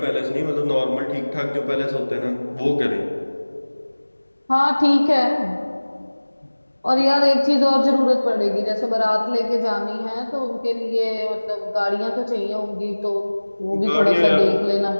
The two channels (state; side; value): inverted; both; correlation -1.00